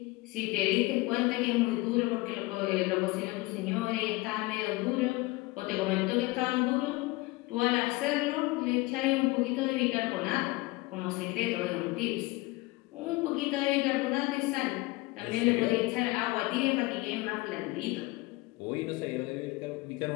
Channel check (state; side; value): quieter; right; 21.9 dB